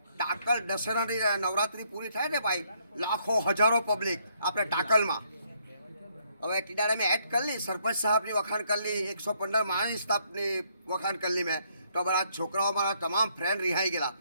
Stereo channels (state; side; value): inverted; both; correlation -0.70